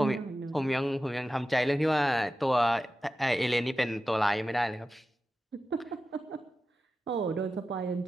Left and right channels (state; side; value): normal; both; correlation 0.93